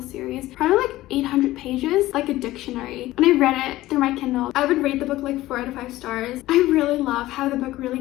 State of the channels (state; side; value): quieter; right; 16.5 dB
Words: series. Probably like 800 pages. Like a dictionary. When I read it through my Kindle, I would rate the book like 4 out of 5 stars. I really love how the book really